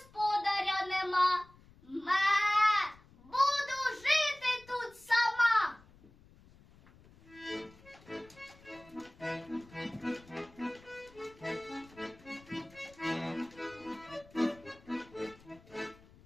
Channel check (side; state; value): left; noise; rumble, 25 dB below the sound